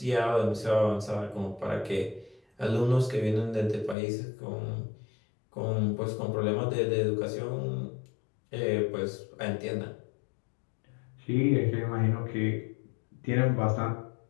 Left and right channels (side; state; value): right; drops out; at 4.0 s